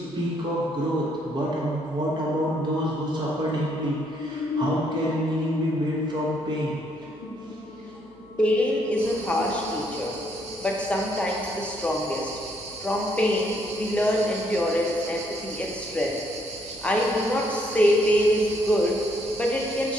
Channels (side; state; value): right; noise; hum, 28 dB below the sound